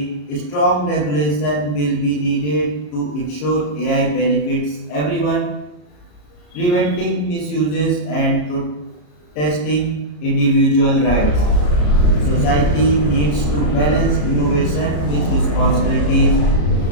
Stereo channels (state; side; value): late; right; 33 ms